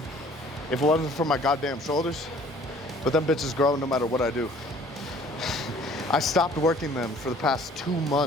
if it wasn't for my goddamn shoulders. But them bitches grow no matter what I do. I stopped working them for the past 2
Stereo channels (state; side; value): normal; both; correlation 0.53